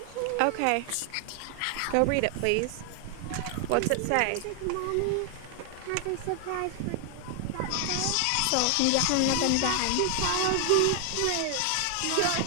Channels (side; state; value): both; different; correlation 0.00